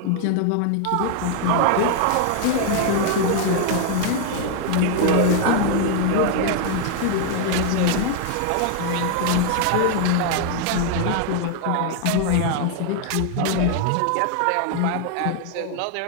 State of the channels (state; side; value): different; both; correlation 0.00